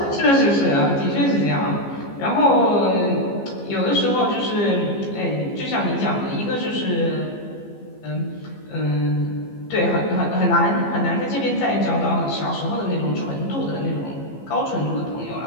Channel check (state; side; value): late; right; 15 ms